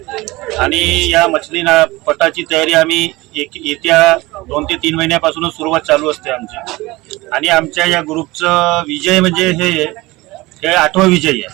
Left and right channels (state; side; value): quieter; left; 20.8 dB